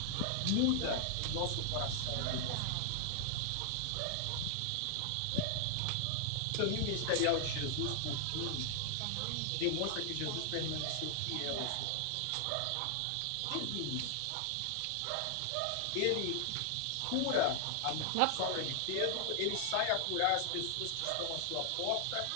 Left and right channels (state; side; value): different; both; correlation 0.00